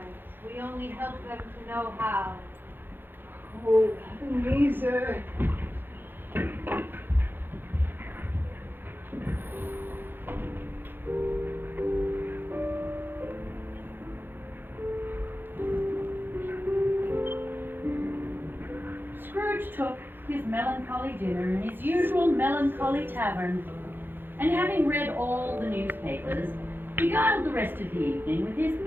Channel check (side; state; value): left; late; 0.099 ms